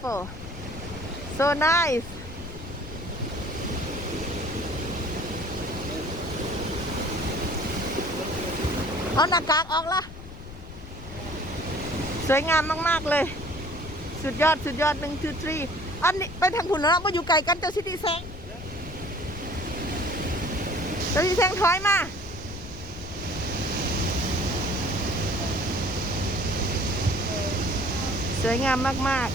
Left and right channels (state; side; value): noise; left; rumble, 13 dB below the sound